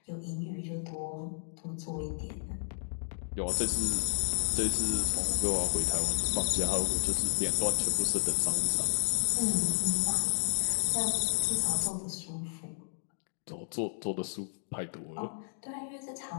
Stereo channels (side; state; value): right; silent; digital silence